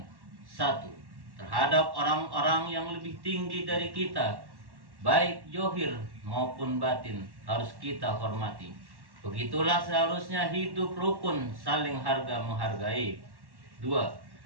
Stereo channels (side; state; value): left; late; 1.1 ms